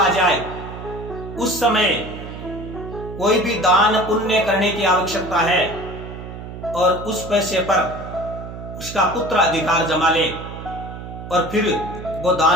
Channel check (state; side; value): noise; right; hum, 11 dB below the sound